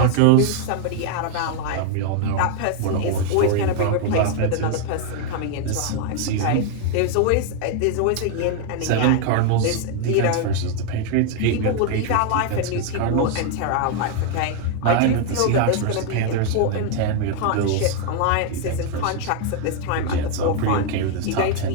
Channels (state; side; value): different; both; correlation 0.00